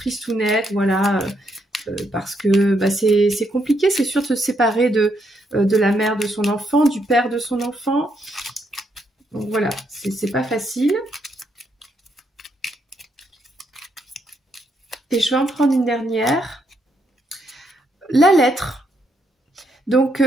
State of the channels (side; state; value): both; normal; correlation 0.76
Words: voilà, parce que bah, c'est compliqué, c'est sûr de se séparer de la mère de son enfant, du père de son enfant. Donc voilà, c'est pas facile. Et je vais en prendre une dernière. La lettre. Donc,